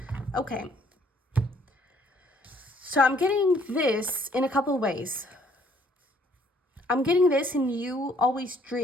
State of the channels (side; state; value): both; normal; correlation 0.63